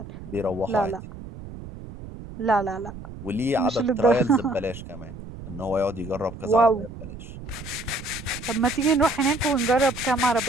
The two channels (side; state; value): right; noise; rumble, 13 dB below the sound